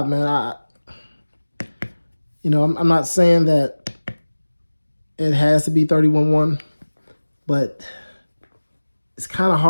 man. I'm not saying that it has to be 31.1, but it's kind of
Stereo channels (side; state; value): both; inverted; correlation -1.00